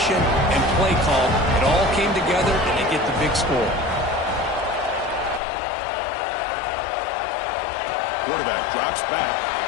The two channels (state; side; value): drops out; right; at 5.4 s